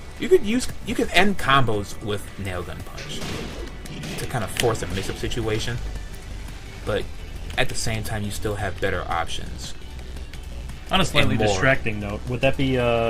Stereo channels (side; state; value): both; identical; correlation 1.00